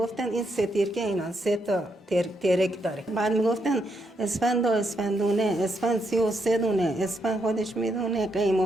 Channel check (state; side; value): normal; both; correlation 0.79